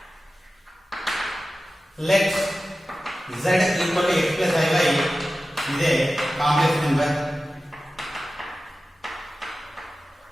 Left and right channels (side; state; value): both; normal; correlation 0.95